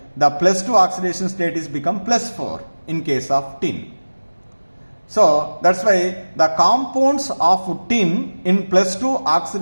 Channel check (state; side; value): inverted; both; correlation -1.00